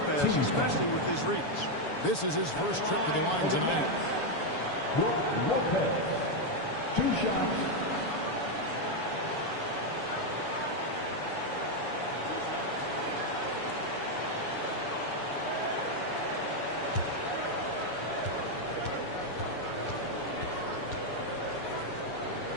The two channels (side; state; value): right; late; 7.0 ms